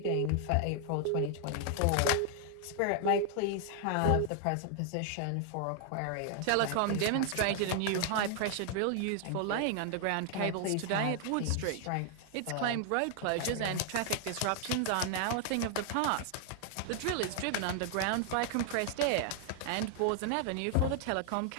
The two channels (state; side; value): different; both; correlation 0.00